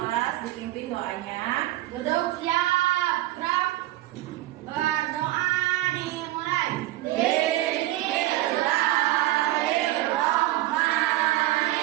dipimpin doanya. Duduk siap, gerak. Berdoa dimulai.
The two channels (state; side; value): quieter; left; 16.7 dB